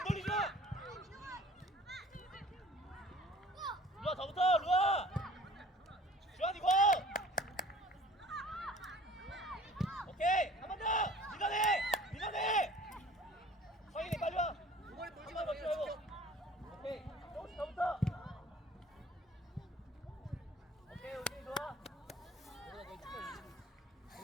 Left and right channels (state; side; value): normal; both; correlation 0.49